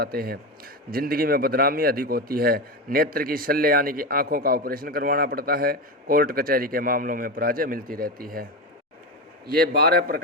हैं। जिंदगी में बदनामी अधिक होती है। नेत्र की शल्य यानी कि आंखों का ऑपरेशन करवाना पड़ता है। कोर्ट कचहरी के मामलों में पराजय मिलती रहती है। ये 12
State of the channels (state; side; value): normal; both; correlation 0.17